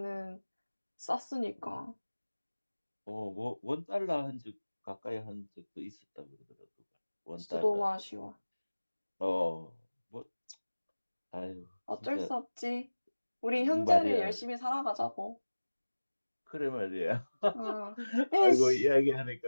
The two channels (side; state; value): both; inverted; correlation -1.00